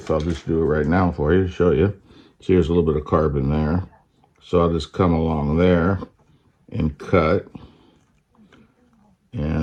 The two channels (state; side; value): identical; both; correlation 1.00